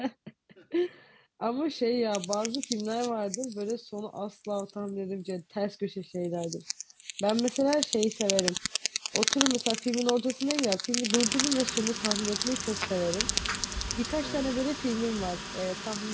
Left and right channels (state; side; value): identical; both; correlation 1.00